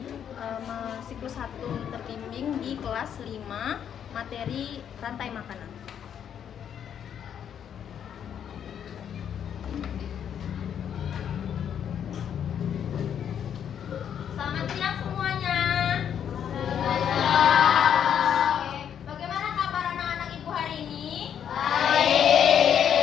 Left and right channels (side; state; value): right; quieter; 8.8 dB